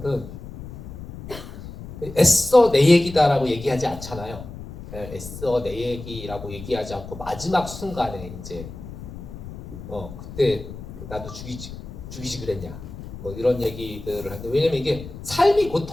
애써 내 얘기다라고 얘기하지 않잖아요. 애써 내 얘기라고 얘기하지 않고 마지막 순간에 이제 그때 나도 죽이지 그랬냐 뭐 이런 얘기들을 하는데, 왜냐면 이게 삶이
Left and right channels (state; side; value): noise; left; rumble, 12 dB below the sound